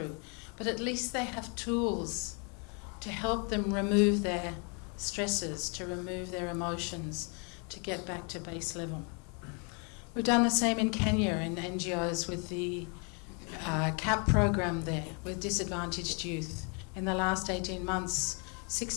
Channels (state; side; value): quieter; right; 36.1 dB